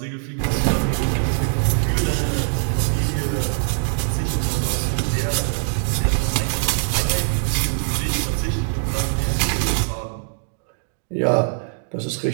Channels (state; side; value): silent; left; 64 dB below the other